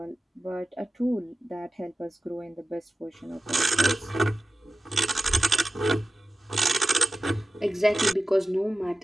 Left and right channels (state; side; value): normal; both; correlation 0.95